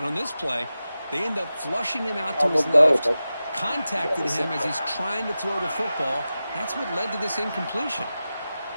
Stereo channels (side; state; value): both; inverted; correlation -0.93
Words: on this play, they end up flushing him out to his left, contacted him as he's trying to throw the football. That's what led to this incompletion.